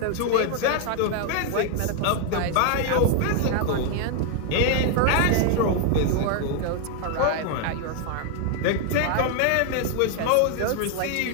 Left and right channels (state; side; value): different; both; correlation 0.00